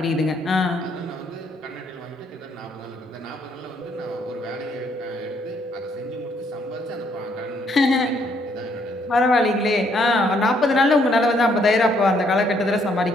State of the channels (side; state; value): both; normal; correlation 0.69